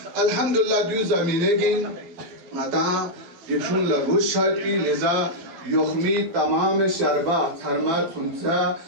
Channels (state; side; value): late; left; 12 ms